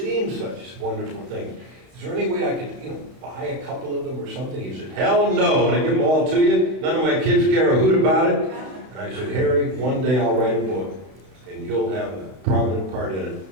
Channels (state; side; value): late; left; 32 ms